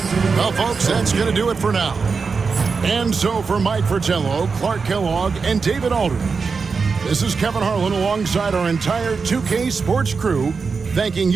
Well, folks, that's going to do it for now. And so for Mike Fratello, Clark Kellogg, and David Aldridge, this is Kevin Harlan alongside our entire 2K Sports crew, thanking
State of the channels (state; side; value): quieter; left; 5.0 dB